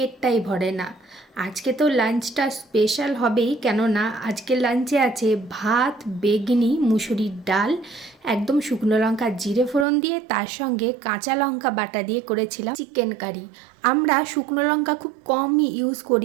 ভরে না। আজকে তো লাঞ্চটা স্পেশাল হবেই, কেননা আজকে লাঞ্চে আছে ভাত, বেগনি, মুসুরির ডাল, একদম শুকনো লঙ্কা জিরে ফোড়ন দিয়ে, তার সঙ্গে কাঁচা লঙ্কা বাটা দিয়ে করেছিলাম চিকেন কারি। আমরা শুকনো লঙ্কা খুব কমই ইউজ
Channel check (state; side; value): drops out; left; at 9.9 s